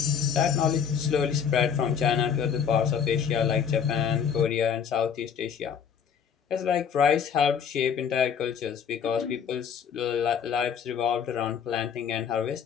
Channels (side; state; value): right; quieter; 7.4 dB